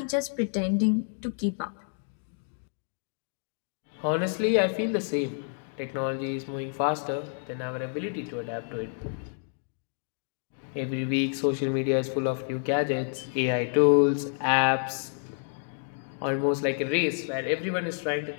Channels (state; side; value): silent; right; 59 dB below the other